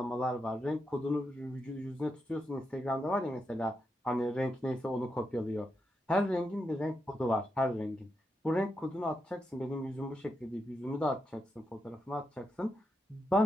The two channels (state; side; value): normal; both; correlation 0.85